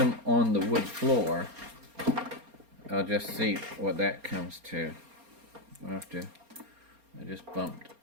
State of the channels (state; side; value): late; left; 4.3 ms